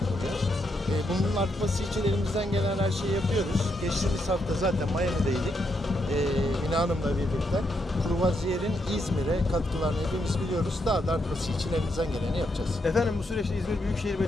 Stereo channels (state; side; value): normal; both; correlation 0.79